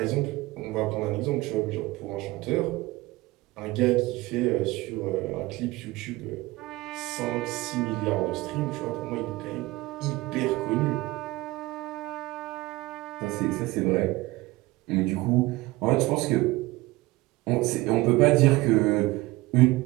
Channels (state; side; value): quieter; left; 20.2 dB